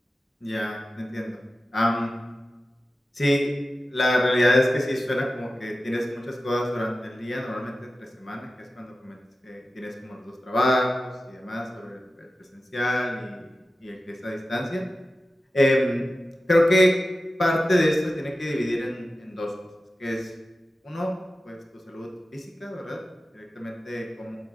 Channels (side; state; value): both; normal; correlation 0.94